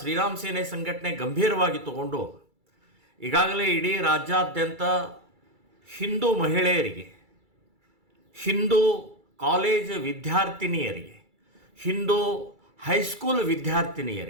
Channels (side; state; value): left; late; 2.3 ms